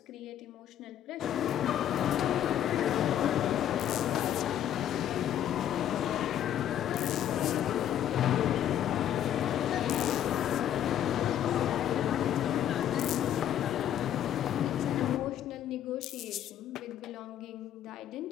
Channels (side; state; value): right; quieter; 10.7 dB